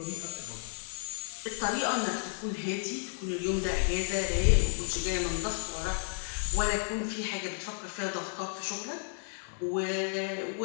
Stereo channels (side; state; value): right; silent; digital silence